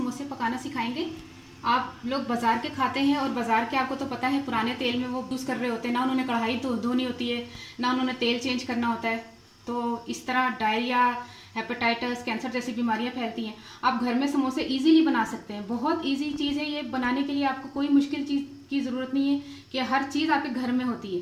पकाना सिखाएंगे। आप लोग बाज़ार के खाते हैं और बाज़ार के आपको तो पता है पुराने तेल में वो यूज़ कर रहे होते हैं, ना उन्होंने कढ़ाई धोनी होती है, ना उन्होंने तेल चेंज करना होता है। तो इस तरह डायरिया, हेपेटाइटिस, कैंसर जैसी बीमारियां फैलती हैं। आप घर में समोसे इजीली बना सकते हैं। बहुत इजी चीज़ है ये बनाने के लिए। आपको कोई मुश्किल चीज़ की ज़रूरत नहीं है कि हर चीज़ आपके घर में होती है,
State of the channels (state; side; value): identical; both; correlation 1.00